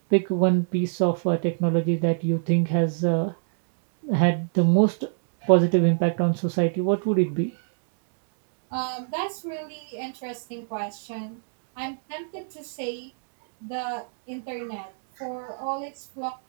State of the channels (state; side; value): silent; left; digital silence